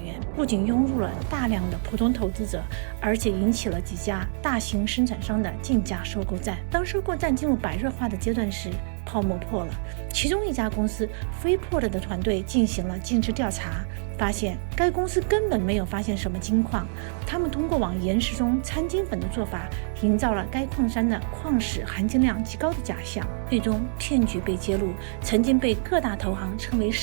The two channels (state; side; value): silent; left; digital silence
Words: 不仅涌入了大量的普通投资者，而且引起了几家大型生产商的竞价收购战。当收购战进入白热化的阶段时，泡沫破了。其中一家公司 Freeport 的团队进行了尽职调查，发现该公司根本没有发现什么金矿，他们通过往岩石中掺金粉的做法，营造了该矿山的矿石含金量极高的假象。最终骗局被揭露，曾经被各大投行称为